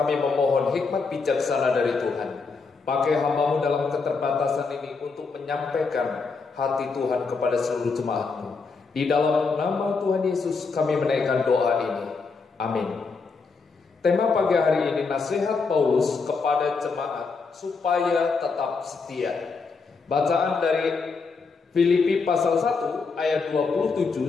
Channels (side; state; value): right; quieter; 4.6 dB